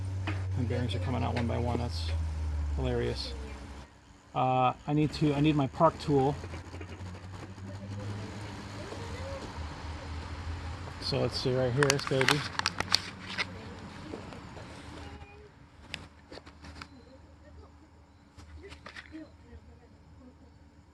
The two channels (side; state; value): both; identical; correlation 1.00